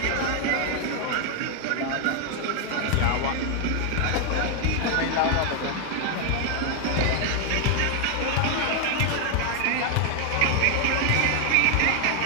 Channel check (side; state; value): both; different; correlation 0.00